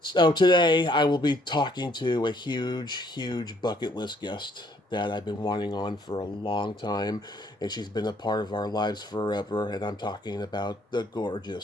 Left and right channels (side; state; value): both; normal; correlation 0.65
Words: today I will be talking to a huge bucket list guest that I've been wanting on for a long time, and she's been a part of our lives forever, and I'm talking about the